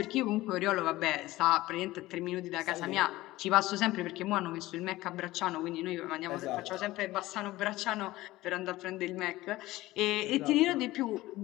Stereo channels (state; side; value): quieter; right; 17.7 dB